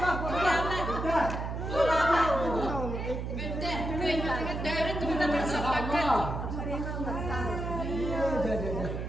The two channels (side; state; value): right; noise; hum, 4 dB below the sound